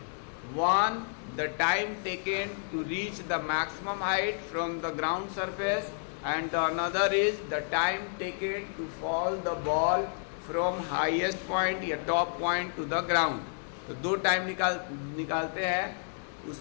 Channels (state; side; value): silent; right; 57 dB below the other